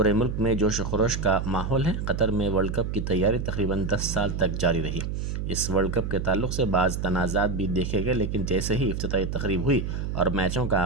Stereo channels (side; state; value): right; noise; hum, 3 dB below the sound